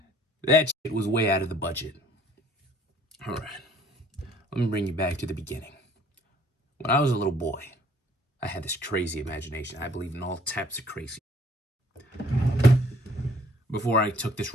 that shit was way out of the budget. All right, let me bring you back to the beginning. When I was a little boy, I had this crazy imagination. I believed in all types of crazy. Before I took this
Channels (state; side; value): normal; both; correlation 0.57